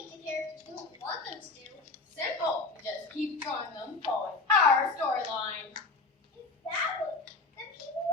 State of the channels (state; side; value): quieter; right; 3.7 dB